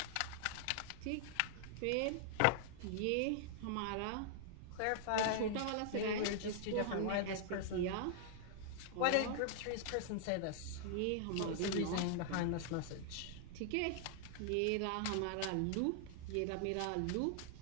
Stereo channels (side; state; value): both; different; correlation 0.00